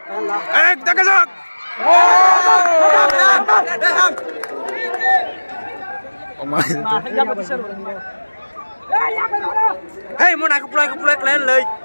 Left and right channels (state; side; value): inverted; both; correlation -1.00